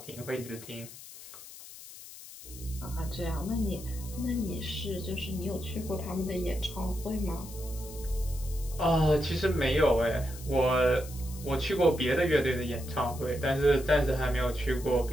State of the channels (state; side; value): noise; left; hiss, 15 dB below the sound